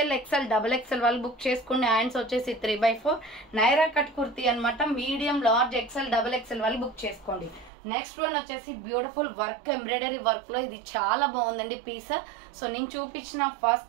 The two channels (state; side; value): drops out; left; at 7.7 s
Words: XL, XXL వాళ్ళు బుక్ చేసుకోండి. హ్యాండ్స్ వచ్చేసి 3/4 నైరా కట్ కుర్తీ అనమాట. మీడియం, లార్జ్, XL, XXL వాళ్ళు బుక్ చేసుకోండి. నెక్స్ట్ వన్ వచ్చేసి బ్యూటిఫుల్ వర్క్, ఎంబ్రాయిడరీ వర్క్ లో. ఇది చాలా బాగుందండి పీస్. సో నేను చూపించిన